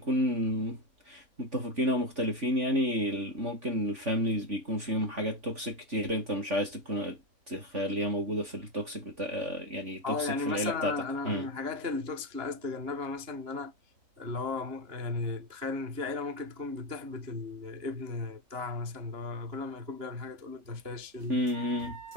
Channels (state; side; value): late; left; 3.5 ms